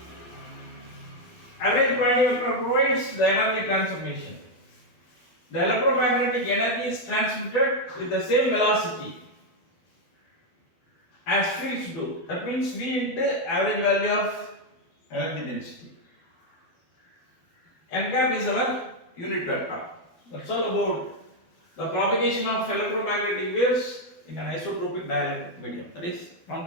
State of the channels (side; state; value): right; late; 12 ms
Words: Average point vector provides the energy transformation. The electromagnetic energy is transmitted with the same velocity as fields do. That means V into average value of energy density. N cap is our unit vector. That's all about the propagation of electromagnetic waves in an isotropic dielectric medium, that is